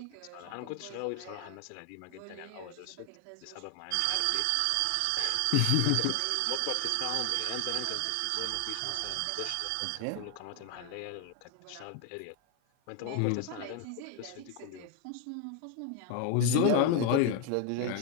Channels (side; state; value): both; different; correlation 0.01